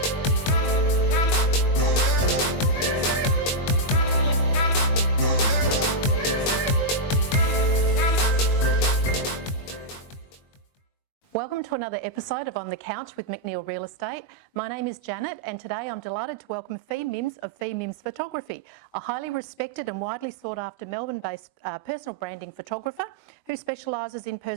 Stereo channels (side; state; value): right; late; 21 ms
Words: Welcome to another episode of On the Couch with McNeill Real Estate. My name is Janet and today I'm delighted to welcome Fi Mims of Fi Mims Photography, a highly respected and widely sought after Melbourne-based personal branding photographer who specialises in